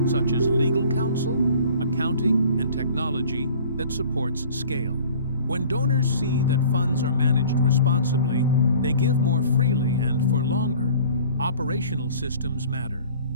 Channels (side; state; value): both; inverted; correlation -0.48